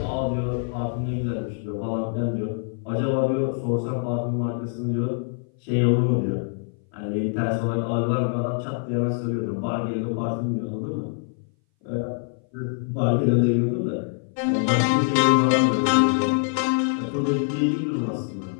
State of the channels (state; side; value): silent; right; 59 dB below the other